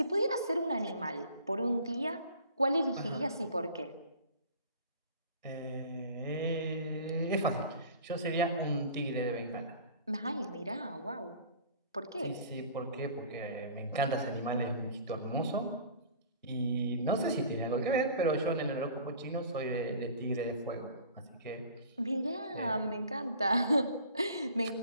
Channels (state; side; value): inverted; both; correlation -0.45